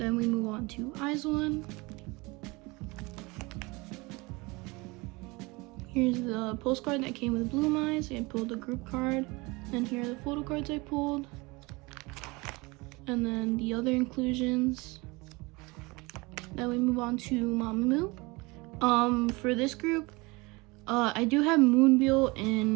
we move on to itzy. Here's the postcard that came with Bloom Eyes. I pulled a group card, and here are the photo cards I pulled. And then the other inclusions. Then we move on to mamamoo. For this group, I do have Moonbyul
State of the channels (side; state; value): left; quieter; 24.9 dB